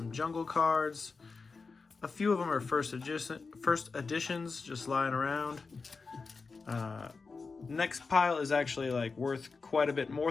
jungle cards. A few of them are first editions, just lying around. Next pile is actually like worth quite a bit more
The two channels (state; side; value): quieter; right; 4.5 dB